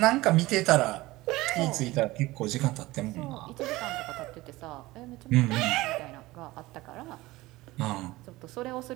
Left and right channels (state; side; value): quieter; left; 19.2 dB